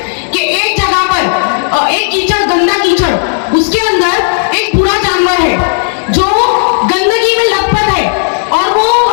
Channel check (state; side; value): silent; right; digital silence